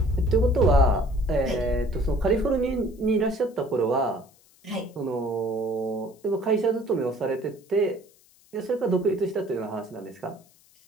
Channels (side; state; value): left; noise; hiss, 30 dB below the sound